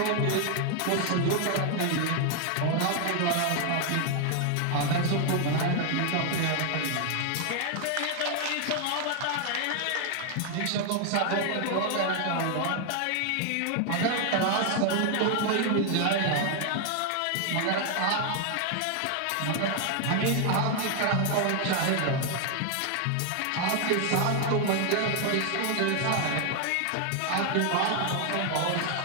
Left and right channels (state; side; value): different; both; correlation 0.00